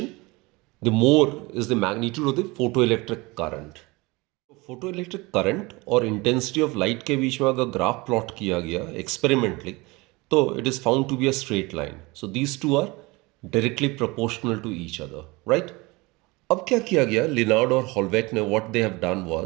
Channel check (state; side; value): quieter; left; 23.9 dB